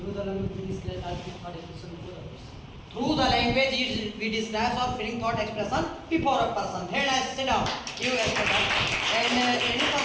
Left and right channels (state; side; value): identical; both; correlation 1.00